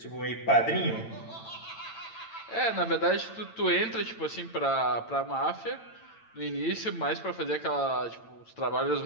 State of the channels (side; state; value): right; late; 8.9 ms